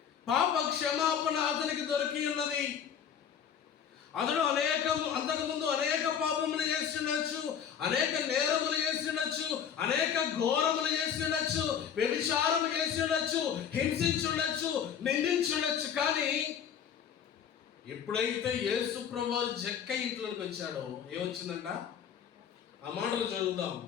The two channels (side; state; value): right; quieter; 8.1 dB